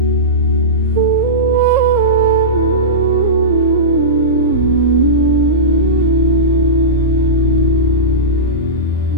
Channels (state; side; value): normal; both; correlation -0.17